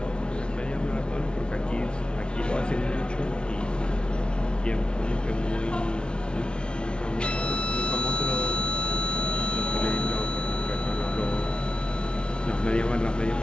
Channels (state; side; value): late; right; 0.056 ms